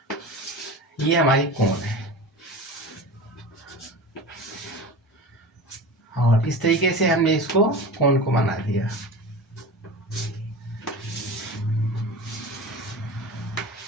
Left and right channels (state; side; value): normal; both; correlation 0.32